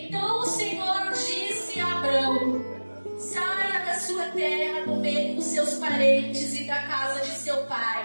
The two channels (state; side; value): inverted; both; correlation -1.00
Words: o Senhor disse a Abrão: saia da sua terra, do meio dos seus parentes e da casa de seu